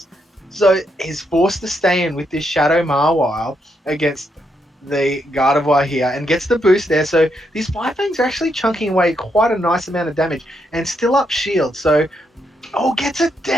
So he's forced to stay in with this Shadow Mawile against the Gardevoir here and gets the boost there. So these Fire Fangs are actually chunking away quite a nice amount of damage and still up shield. So, gets it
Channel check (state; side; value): normal; both; correlation 0.79